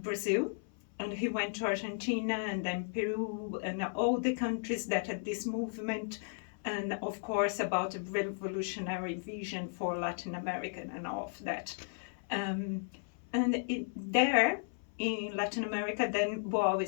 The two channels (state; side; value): silent; right; 54 dB below the other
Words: and he went to Argentina and then Peru and all the countries that had this movement, and of course about a revolutionary vision for Latin America and all of that. There in Latin America, then Boal